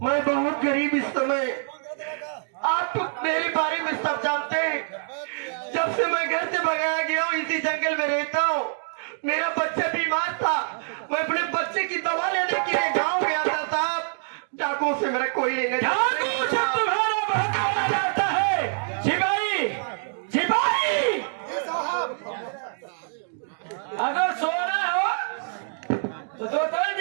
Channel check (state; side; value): silent; left; digital silence